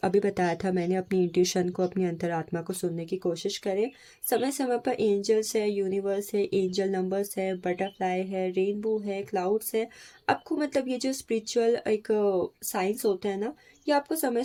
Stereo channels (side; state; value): both; identical; correlation 1.00